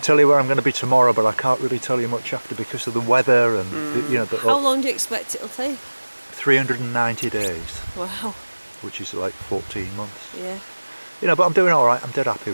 tell you where I'm going to be tomorrow, but I can't really tell you much after because of the weather and you know." How long do you expect it'll take? 390 days. Wow. Which is like 14 months. Yeah. You know, but I'm doing all right. I'm dead happy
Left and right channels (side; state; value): both; inverted; correlation -1.00